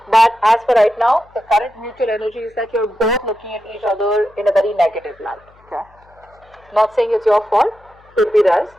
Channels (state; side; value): noise; left; hum, 29 dB below the sound